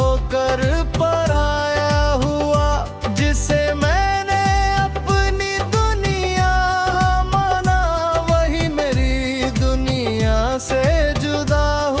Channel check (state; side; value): identical; both; correlation 1.00